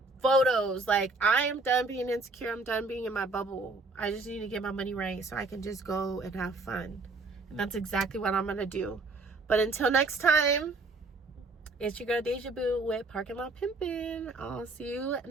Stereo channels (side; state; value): left; quieter; 3.5 dB